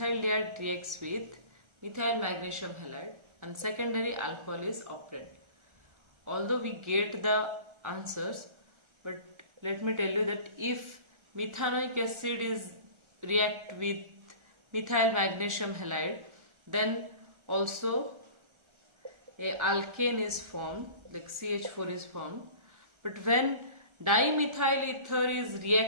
reacts with methyl magnesium halide and secondary alcohol is operant. Although we get the answers, but let me tell you that if methanoic acid is react with methyl magnesium halide, then also a alkane is formed, like CH4 is formed. But when dimethyl ether is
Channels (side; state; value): left; late; 1.3 ms